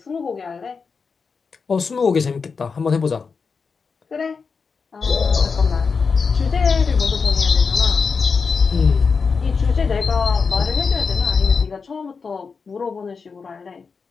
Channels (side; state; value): right; quieter; 5.2 dB